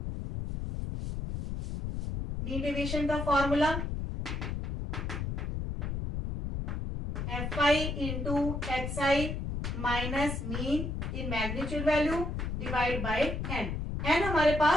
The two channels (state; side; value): noise; left; rumble, 3 dB below the sound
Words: मीन डेविएशन का formula fi into xi minus mean in magnitude value divide by n, n हमारे